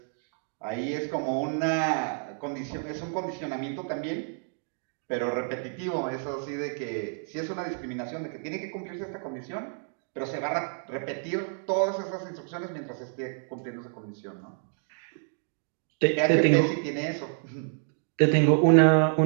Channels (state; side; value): silent; left; 59 dB below the other